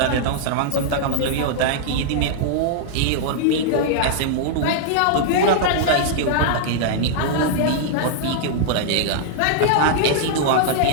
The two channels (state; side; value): different; both; correlation -0.01